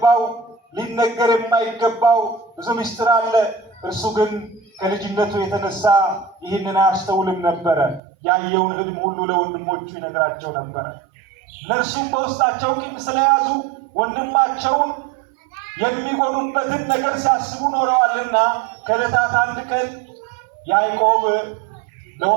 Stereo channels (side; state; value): left; drops out; at 8.0 s